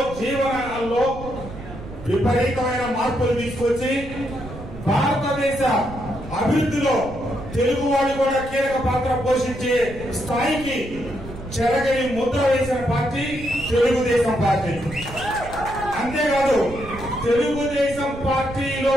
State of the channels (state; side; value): noise; right; rumble, 13 dB below the sound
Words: విపరీతమైన మార్పులు తీసుకొచ్చి భారతదేశ అభివృద్ధిలో తెలుగు వాళ్ళు కూడా కీలక పాత్ర పోషించే స్థాయికి చెరగని ముద్ర వేసిన పార్టీ తెలుగుదేశం పార్టీ. అంతేకాదు తెలుగుదేశం పార్టీలో